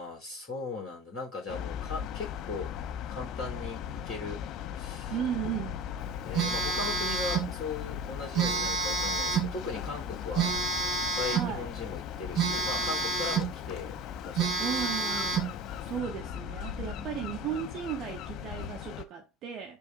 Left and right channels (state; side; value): normal; both; correlation 0.35